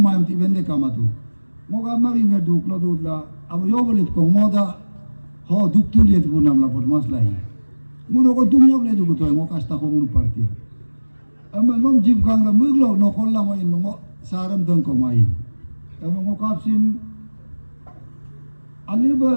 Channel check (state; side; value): inverted; both; correlation -1.00